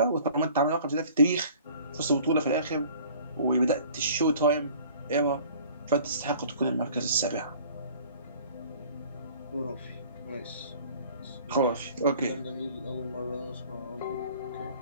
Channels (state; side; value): inverted; both; correlation -0.50